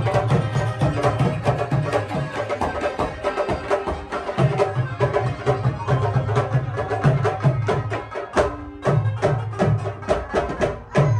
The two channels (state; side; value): identical; both; correlation 1.00